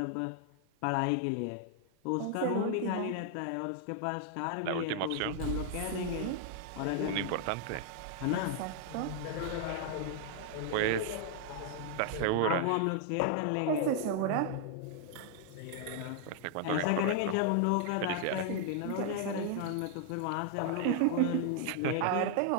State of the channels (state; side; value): different; both; correlation 0.00